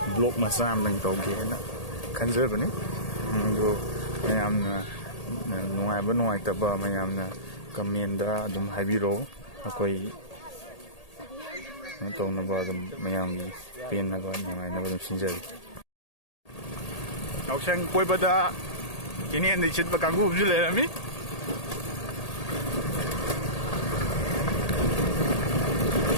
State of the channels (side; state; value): right; late; 1.8 ms